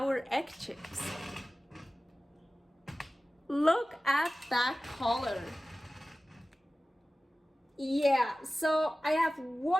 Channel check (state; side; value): normal; both; correlation 0.96